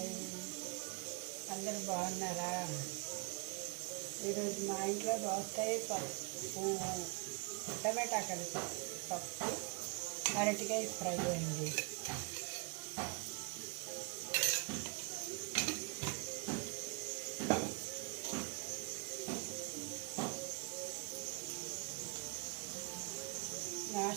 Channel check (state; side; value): quieter; left; 31.6 dB